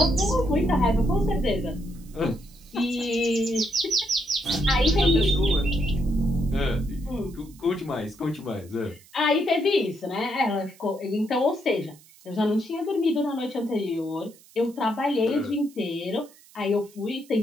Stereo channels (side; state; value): right; noise; hiss, 25 dB below the sound